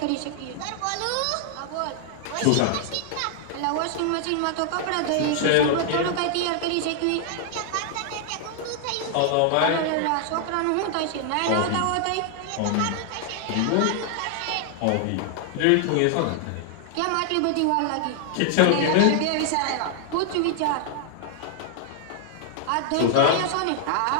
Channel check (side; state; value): both; different; correlation 0.00